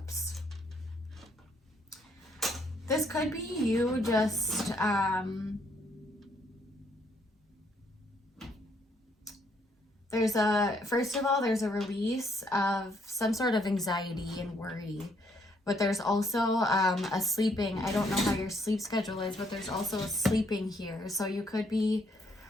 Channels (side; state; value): both; normal; correlation 0.70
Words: This could be you just, first of all, there's a release of some sort of anxiety and worry. But there's also a sleeping. I don't know how your sleep schedule is, but there's also a sleeping here. So you could be